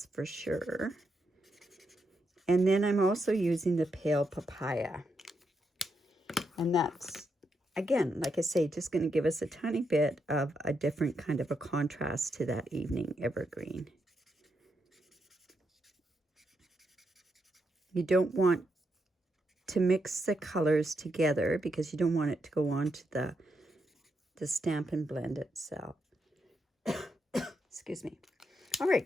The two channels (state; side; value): normal; both; correlation 0.82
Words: for sure. And then I'm also using the Pale Papaya. And that's, again, like I say, just going to give us a tiny bit of a different kind of a contrast to that Evening Evergreen. You don't want to mix the colors together because you don't want it to go on to the Stampin' Blend itself. Excuse me. All